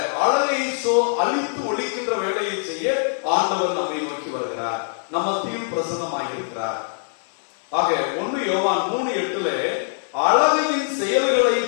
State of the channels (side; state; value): right; silent; 64 dB below the other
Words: அழகை அழித்து ஒழிக்கின்ற வேலையை செய்ய ஆண்டவர் நம்மை நோக்கி வருகிறார், நம்ம மத்தியில் பிரசன்னமாக இருக்கிறார். ஆக 1 யோவான் 3:8 அழகையின் செயல்களை